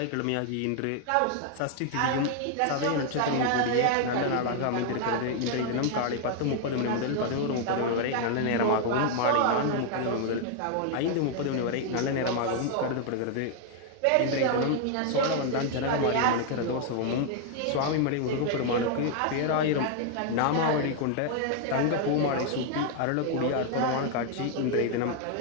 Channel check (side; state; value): both; different; correlation 0.00